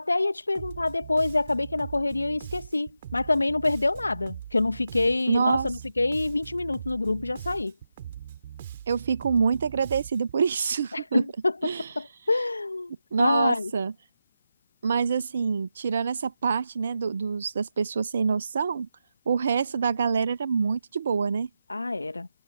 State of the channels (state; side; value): inverted; both; correlation -0.89